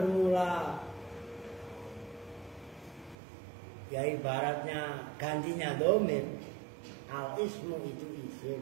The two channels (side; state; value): left; drops out; at 3.2 s